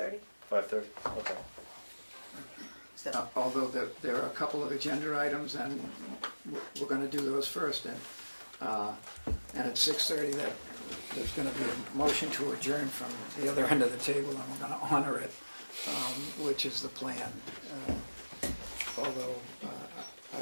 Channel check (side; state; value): both; inverted; correlation -1.00